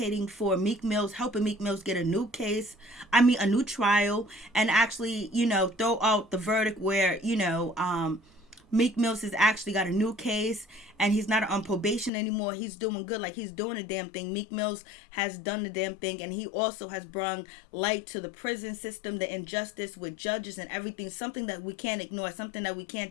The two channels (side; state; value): right; drops out; at 12.1 s